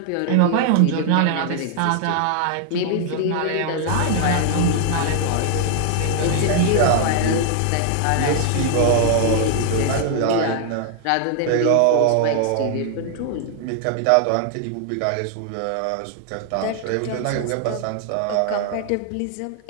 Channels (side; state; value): both; different; correlation 0.00